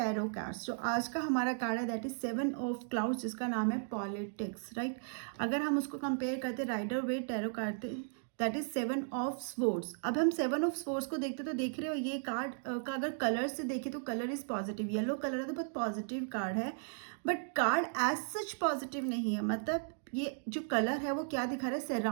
cards. जो आज का हमारा कार्ड है दैट इज 7 ऑफ क्लाउड्स, जिसका नाम है पॉलिटिक्स, राइट। अगर हम उसको कंपेयर करते राइडर वेट टैरो करते दैट इज 7 ऑफ स्वॉर्ड्स। अब हम 7 ऑफ स्वॉर्ड्स को देखते तो देख रहे हो ये कार्ड का अगर कलर से देखें तो colour is positive, yellow colour है तो बहुत पॉजिटिव कार्ड है, but card as such positive नहीं है। मतलब ये जो कलर है वो क्या दिखा रहा है,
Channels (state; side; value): silent; left; digital silence